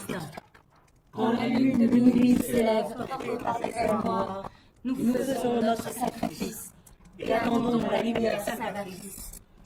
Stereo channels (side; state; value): both; identical; correlation 1.00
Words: Quand la lune de minuit s'élève portée par des ailes noires, nous faisons notre sacrifice et attendons la lumière salvatrice.